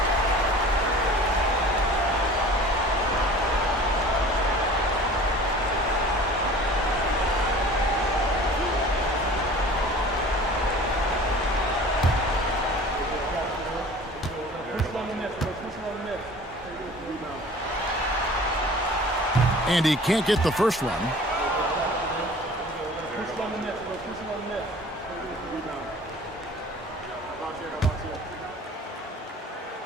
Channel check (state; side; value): normal; both; correlation 0.44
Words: And he can't get the first one.